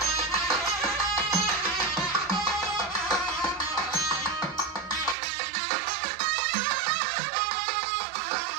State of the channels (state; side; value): drops out; left; at 5.2 s